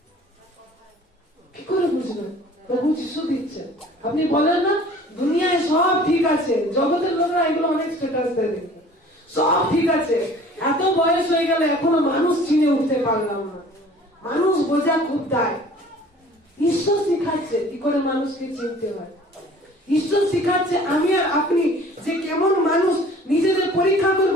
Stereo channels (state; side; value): normal; both; correlation 0.49